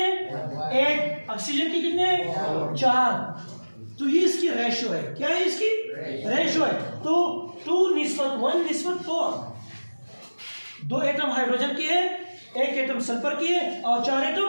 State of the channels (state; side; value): inverted; both; correlation -1.00